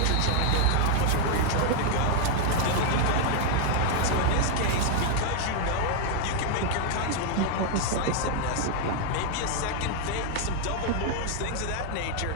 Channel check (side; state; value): both; different; correlation 0.00